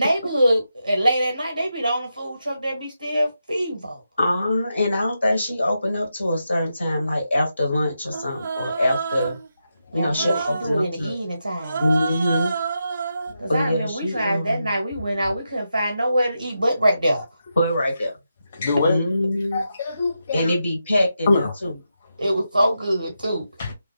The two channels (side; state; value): both; inverted; correlation -0.86